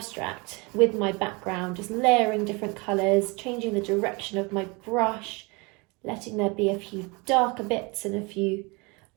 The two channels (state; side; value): quieter; left; 28.0 dB